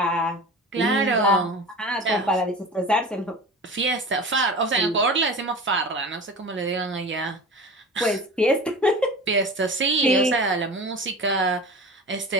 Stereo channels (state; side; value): normal; both; correlation 0.34